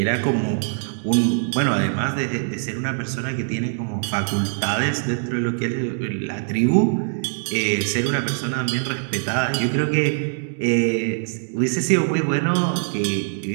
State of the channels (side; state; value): left; silent; digital silence